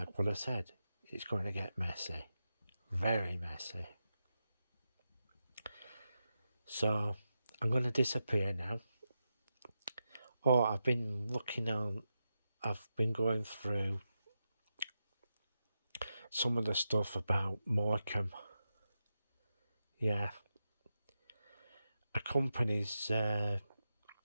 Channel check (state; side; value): inverted; both; correlation -0.88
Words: what I said, it's going to get messy, very messy. So I'm going to disappear now. I've been going through some of the stuff about Morecambe. Yeah. A company's